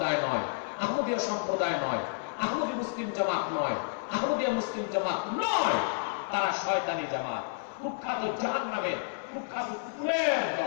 নয়, আহমদিয়া সম্প্রদায় নয়, আহমদী মুসলিম জামাত নয়, আহমদিয়া মুসলিম জামাত নয়। তারা শয়তানি জামাত, কুখ্যাত জাহান্নামের কুখ্যাত কুকুরের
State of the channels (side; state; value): right; silent; 57 dB below the other